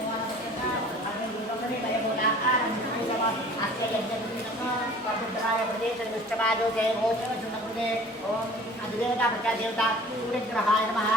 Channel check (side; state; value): both; normal; correlation 0.47